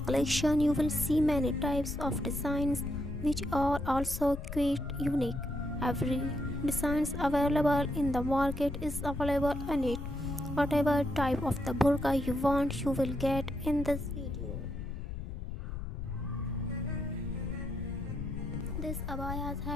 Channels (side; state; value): left; noise; rumble, 6 dB below the sound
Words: collection, you will see many types of designs which are also quite unique. Every designs available in the market is available in it. Whatever type of the burqa you want, you will get in this video. These abayas